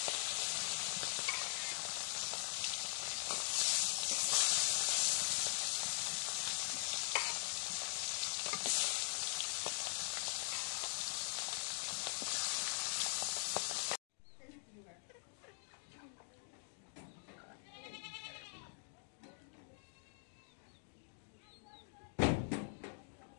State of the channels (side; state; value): right; silent; digital silence